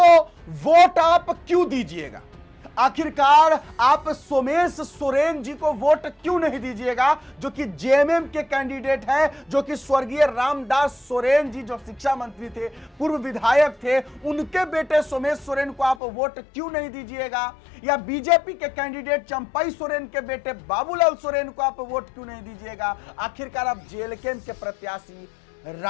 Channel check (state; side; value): drops out; right; at 16.0 s